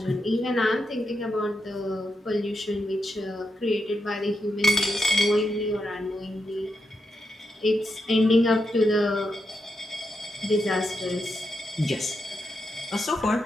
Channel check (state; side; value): normal; both; correlation 0.84